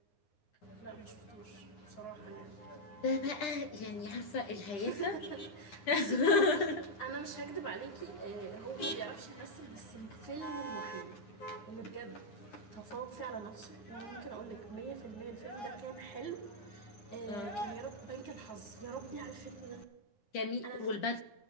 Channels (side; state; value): right; late; 10 ms